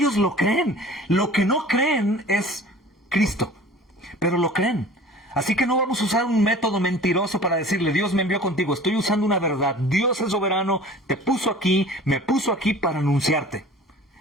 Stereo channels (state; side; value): normal; both; correlation 0.43